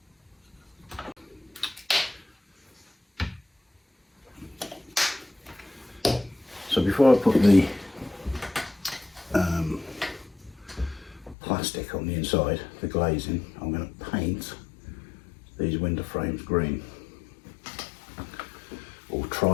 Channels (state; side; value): drops out; right; at 11.4 s